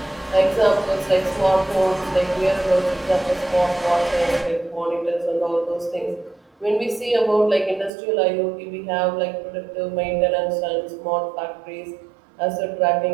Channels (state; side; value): drops out; left; at 7.9 s